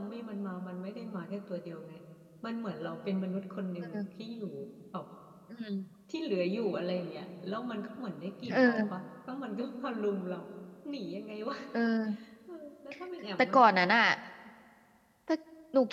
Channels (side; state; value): both; identical; correlation 1.00